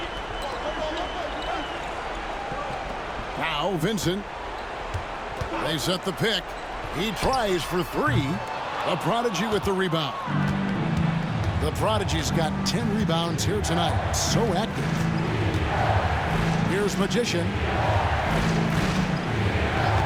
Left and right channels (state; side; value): identical; both; correlation 1.00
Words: Now Vincent. They set the pick. He tries for 3. The prodigy with the rebound. The prodigy's got 10 rebounds here tonight. So active. Here's Magician.